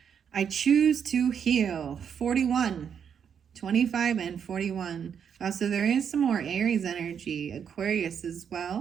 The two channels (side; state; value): left; quieter; 7.6 dB